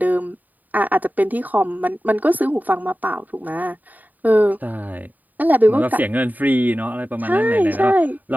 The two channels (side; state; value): left; late; 0.084 ms